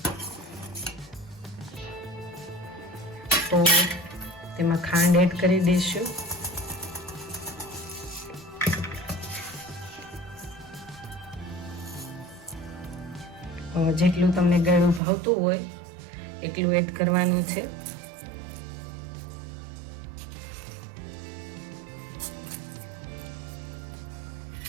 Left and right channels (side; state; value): left; drops out; at 15.0 s